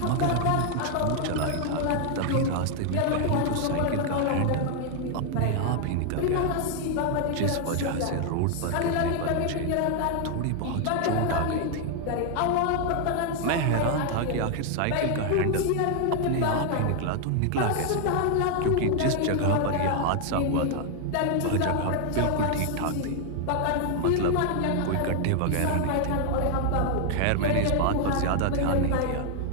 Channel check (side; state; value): both; different; correlation 0.00